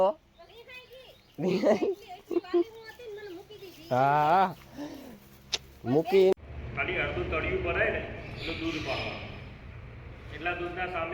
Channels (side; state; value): both; identical; correlation 1.00